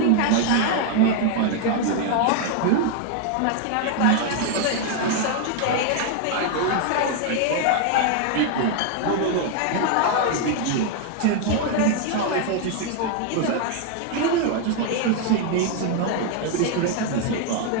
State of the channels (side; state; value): both; different; correlation 0.01